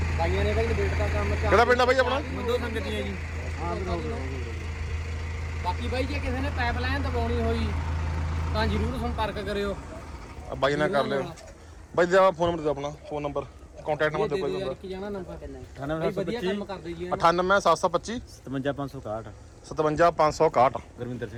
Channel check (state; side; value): identical; both; correlation 1.00